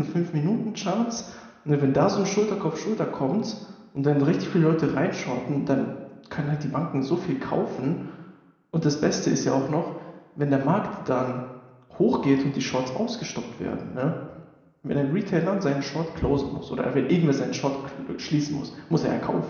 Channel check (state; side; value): identical; both; correlation 1.00